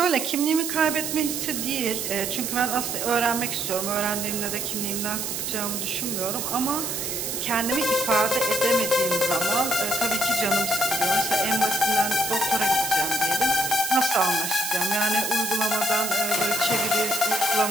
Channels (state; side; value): noise; right; hiss, 3 dB below the sound